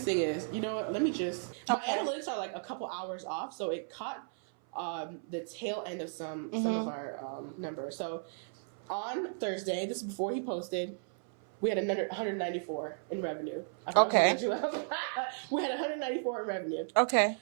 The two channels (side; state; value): left; silent; 55 dB below the other